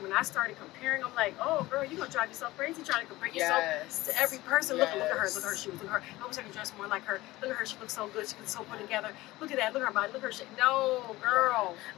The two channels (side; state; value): right; quieter; 18.5 dB